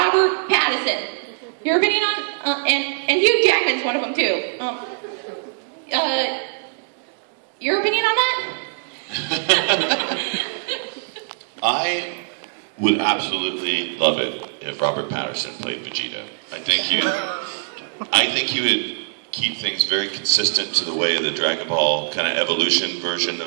Pattinson. Your opinion on and Hugh Jackman's one of them too. Your opinion on that? I would absolutely love it if Robert Pattinson played Vegeta. I think he would keep things very consistent to the way the Dragon Ball kind of evolution version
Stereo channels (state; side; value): silent; left; digital silence